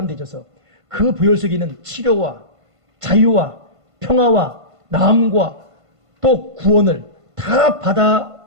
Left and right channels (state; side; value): late; left; 1.5 ms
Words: 되셔서 그 보혈 속에 있는 치료와 자유와 평화와 나음과 또 구원을 다